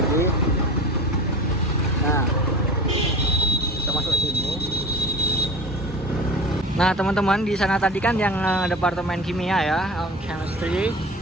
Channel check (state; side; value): normal; both; correlation 0.36